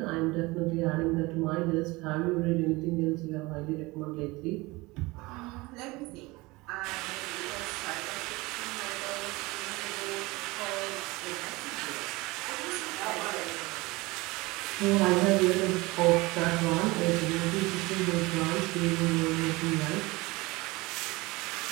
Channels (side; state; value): left; quieter; 22.6 dB